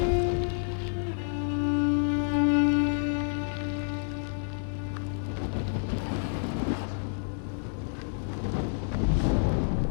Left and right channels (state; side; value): silent; right; digital silence